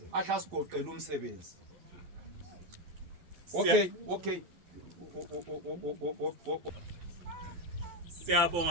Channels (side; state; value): left; late; 11 ms